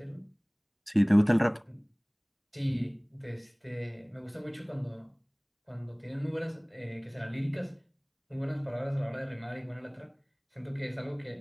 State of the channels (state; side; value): identical; both; correlation 1.00